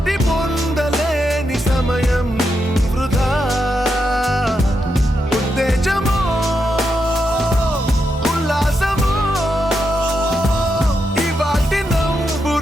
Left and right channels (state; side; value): normal; both; correlation 0.84